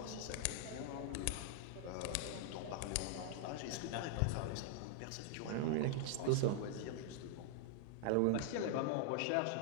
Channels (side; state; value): both; different; correlation 0.00